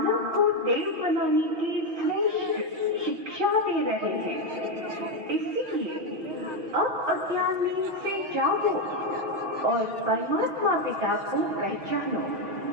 को देव बनाने की श्रेष्ठ शिक्षा दे रहे हैं। इसीलिए अब अज्ञान में से जागो और परमात्मा पिता को पहचानो।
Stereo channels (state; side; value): late; left; 6.0 ms